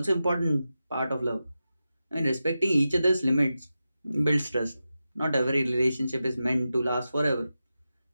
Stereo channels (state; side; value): inverted; both; correlation -0.91